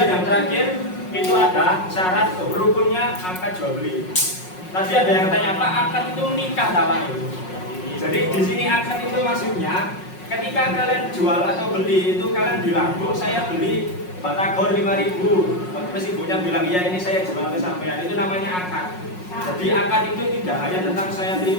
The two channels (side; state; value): right; late; 5.5 ms